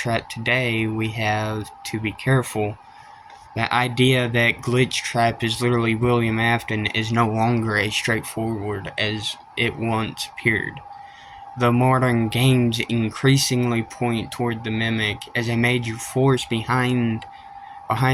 today, we have to be careful. The idea that Glitch Trap is literally William Afton is no longer as straightforward as it once appeared. The modern games increasingly point toward the mimic as a major force behind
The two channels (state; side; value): identical; both; correlation 1.00